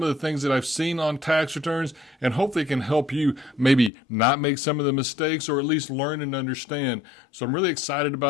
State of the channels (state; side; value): drops out; right; at 3.9 s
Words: of the things that I've seen on tax returns, and hopefully it can help you maybe not make some of the mistakes or at least learn and understand. So I'm really excited